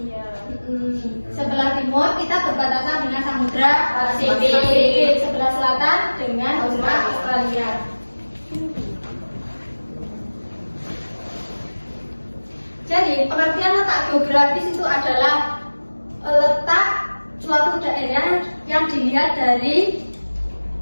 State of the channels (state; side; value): inverted; both; correlation -1.00